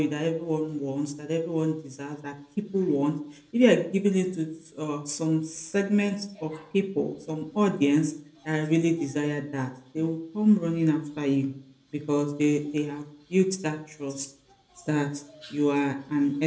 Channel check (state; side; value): identical; both; correlation 1.00